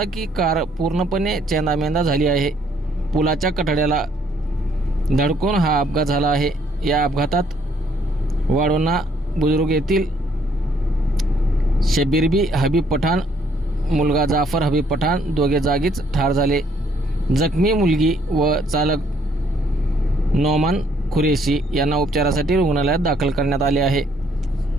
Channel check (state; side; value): normal; both; correlation 0.66